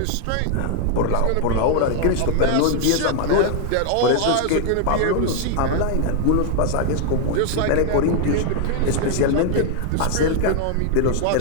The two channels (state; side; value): different; both; correlation 0.00